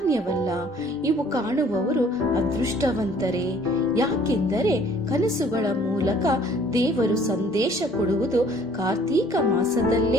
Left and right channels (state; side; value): normal; both; correlation 0.56